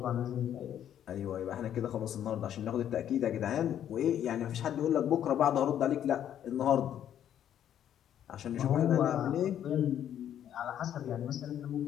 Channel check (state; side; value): quieter; right; 10.3 dB